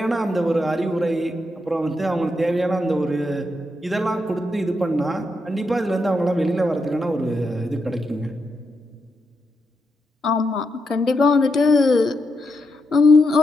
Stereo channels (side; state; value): both; normal; correlation 0.83